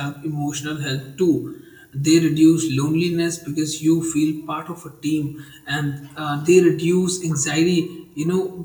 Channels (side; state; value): both; identical; correlation 1.00